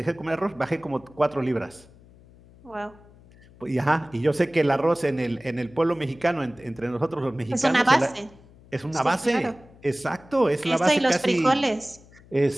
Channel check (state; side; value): noise; left; hum, 25 dB below the sound